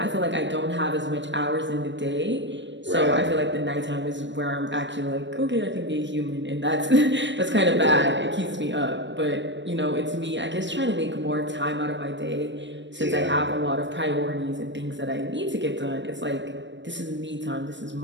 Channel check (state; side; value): late; left; 0.53 ms